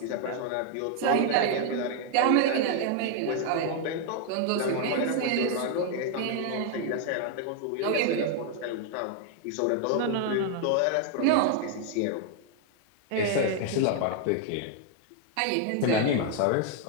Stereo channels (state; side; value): different; both; correlation 0.00